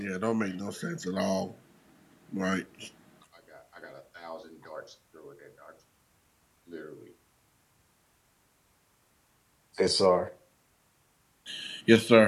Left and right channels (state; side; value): identical; both; correlation 1.00